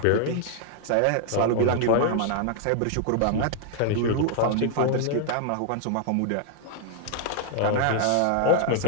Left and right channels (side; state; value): both; different; correlation 0.00